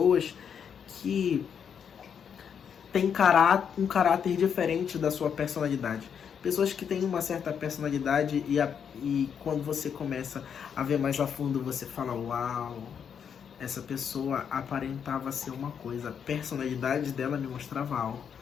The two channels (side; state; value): right; quieter; 7.6 dB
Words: que têm um caráter diferente da sua personalidade. Pessoas que têm uma certa personalidade e quando você começa a ver mais a fundo, você fala, uau, essa pessoa aparentava ser uma coisa, a personalidade dela me mostrava algo.